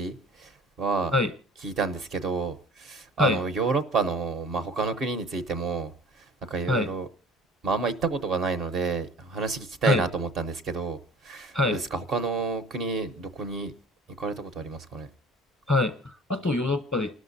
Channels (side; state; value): both; normal; correlation 0.46